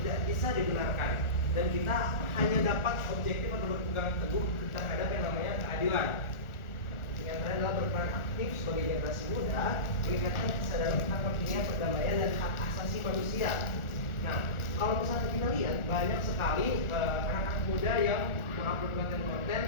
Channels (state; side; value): late; right; 1.4 ms